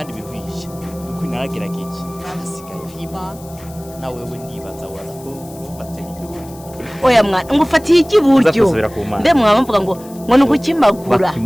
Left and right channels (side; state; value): left; noise; hiss, 21 dB below the sound